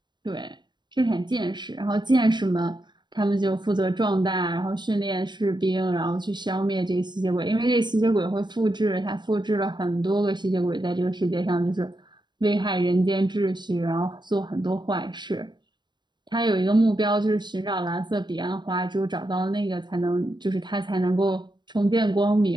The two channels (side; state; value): left; late; 0.22 ms